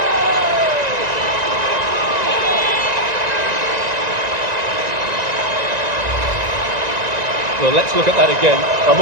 Well, let's look at that again. I'm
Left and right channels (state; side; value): late; left; 1.9 ms